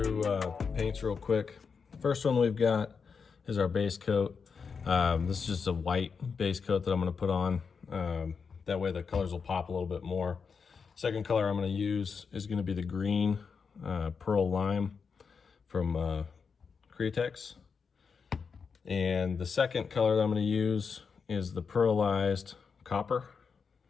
the paints real quick. The first one we've got is our base coat. This is just a white base coat that I'm going to put on. That way the colors will pop a little bit more. Second color I'm going to use is going to be the green pearl lime from J&Ks. And the second color that I'm going to use is the pearlized copper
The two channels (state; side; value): quieter; right; 5.7 dB